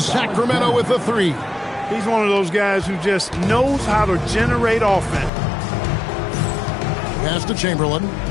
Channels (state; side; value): drops out; right; at 5.3 s